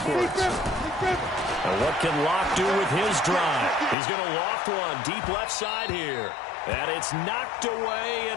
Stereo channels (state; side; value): drops out; right; at 4.0 s